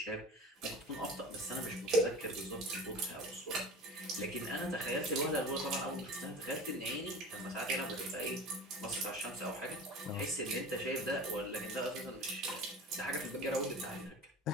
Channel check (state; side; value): normal; both; correlation 0.36